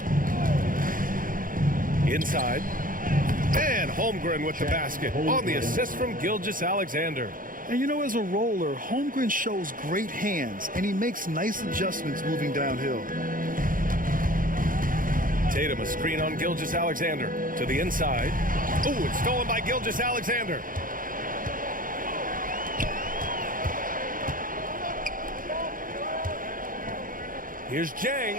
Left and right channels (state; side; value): late; left; 0.40 ms